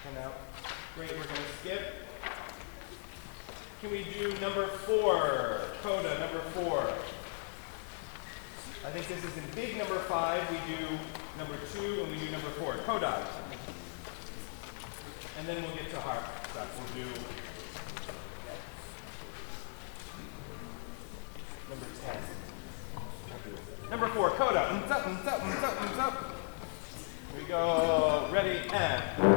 for now. Great, we're going to skip. Can we do number 4? Coda, number 4. I think this is in big number 5. We do number 2 and we do number 4. Coda. And then we'll get to harp stuff. We'll do number 10. Number 4, coda. Here we go. Ready, and.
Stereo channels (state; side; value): silent; right; 53 dB below the other